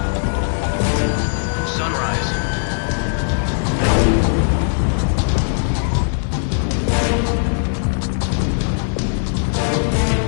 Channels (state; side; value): silent; right; digital silence